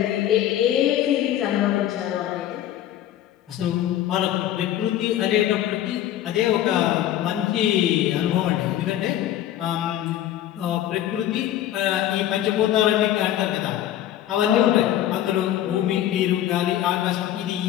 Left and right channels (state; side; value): quieter; right; 12.2 dB